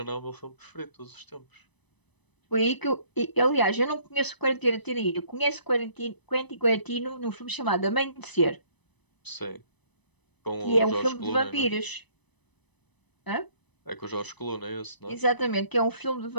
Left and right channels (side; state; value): right; late; 1.0 ms